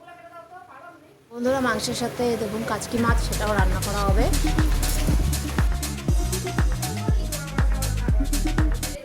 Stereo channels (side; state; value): both; identical; correlation 1.00